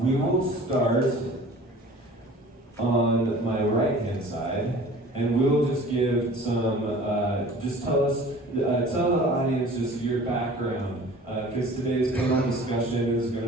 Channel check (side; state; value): both; normal; correlation 0.45